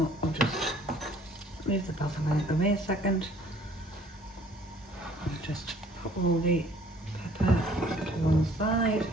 I'll just move the basil out of the way a second. I'll just put all the pepper to one side.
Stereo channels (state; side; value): normal; both; correlation 0.57